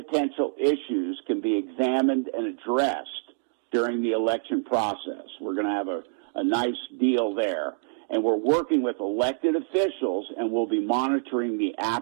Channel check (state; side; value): silent; left; 61 dB below the other